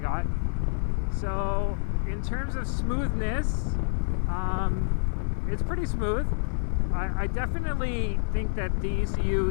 So in terms of smoothness, it's pretty smooth. I definitely think that the ECU,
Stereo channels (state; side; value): silent; right; digital silence